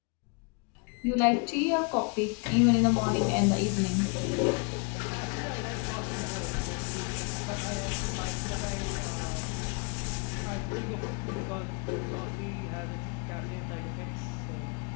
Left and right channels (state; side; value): quieter; right; 34.2 dB